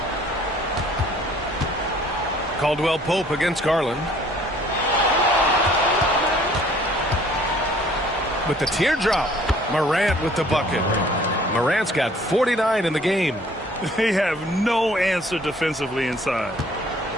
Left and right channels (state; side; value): normal; both; correlation 0.56